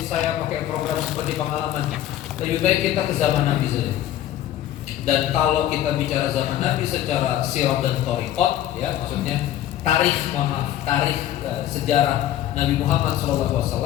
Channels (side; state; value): right; quieter; 12.4 dB